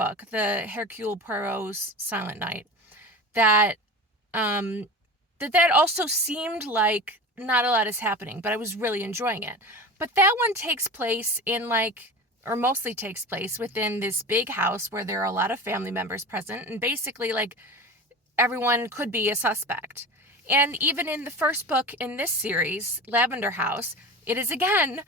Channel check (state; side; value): normal; both; correlation 0.31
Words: the Hercule Poirot's Silent Night, that that also seemed like not a lot is happening, but I was really enjoying it. But that one takes place in like, or mostly takes place within this big house where there are a lot of family members present, and basically like everyone could be a suspect. And even in the first book in this series, Lavender House, it is again,